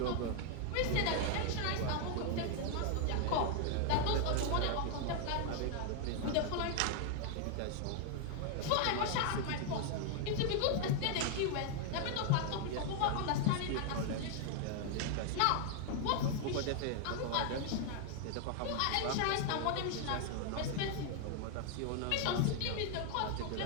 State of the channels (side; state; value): both; different; correlation 0.00